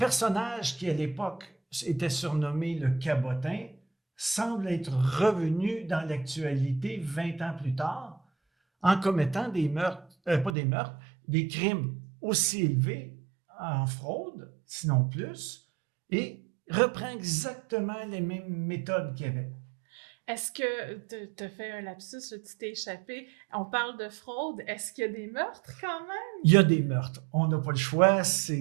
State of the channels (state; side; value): drops out; left; at 10.6 s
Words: qui, à l'époque, était surnommé le cabotin, semble être revenu dans l'actualité 20 ans plus tard en commettant des crimes aussi élevés en fraude, sinon plus, et reprend exactement les mêmes méthodes qu'il y avait. Est-ce que tu as fait un lapsus, là, tu t'es échappé? On parle de fraude. Est-ce qu'il y a des meurtres quand même? Il y a des meurtres. On n'a pas le choix.